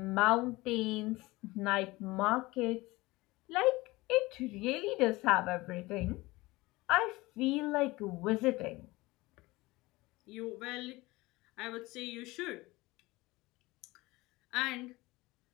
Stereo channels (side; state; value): right; quieter; 21.0 dB